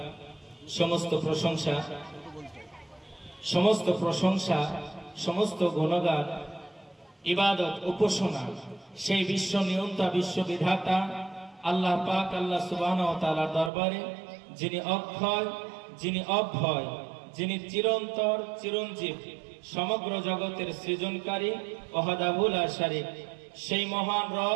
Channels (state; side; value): drops out; left; at 13.7 s